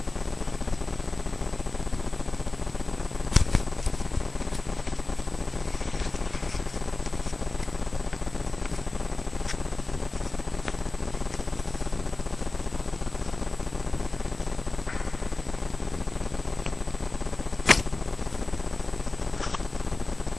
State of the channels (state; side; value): quieter; right; 3.3 dB